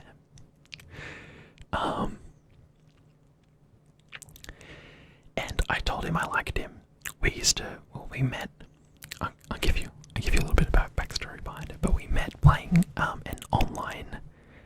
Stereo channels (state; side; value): identical; both; correlation 1.00